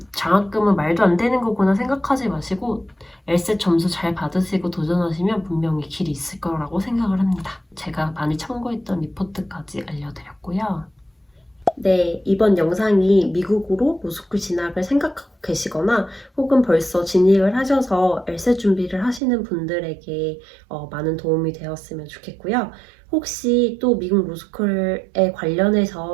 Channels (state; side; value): drops out; left; at 19.2 s